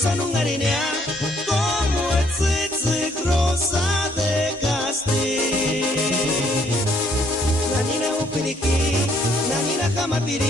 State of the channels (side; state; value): both; normal; correlation 0.67